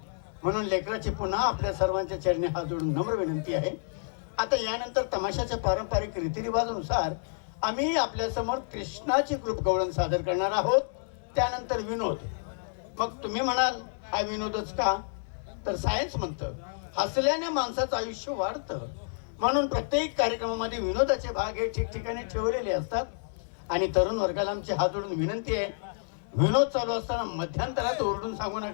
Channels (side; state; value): right; silent; 58 dB below the other